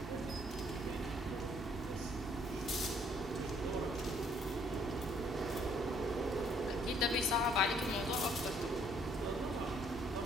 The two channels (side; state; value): both; normal; correlation 0.64